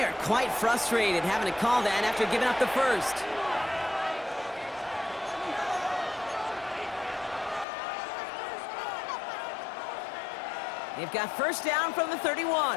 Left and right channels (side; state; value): right; drops out; at 7.7 s